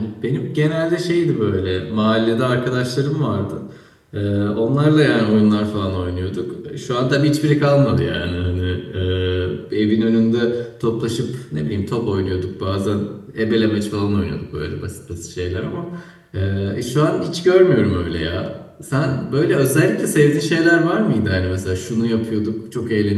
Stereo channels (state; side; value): identical; both; correlation 1.00